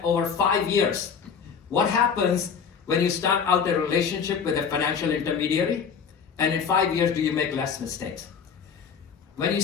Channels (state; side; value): quieter; right; 6.5 dB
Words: over 5 years. What happens when you start out a relationship with a financial intermediary, and in 5 years do you make less mistakes? When you